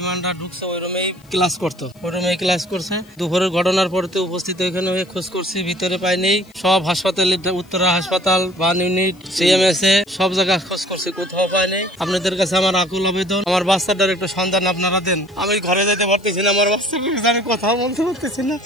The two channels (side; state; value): left; noise; hiss, 30 dB below the sound